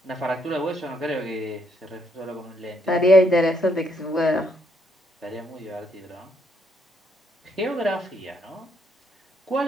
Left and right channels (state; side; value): normal; both; correlation 0.73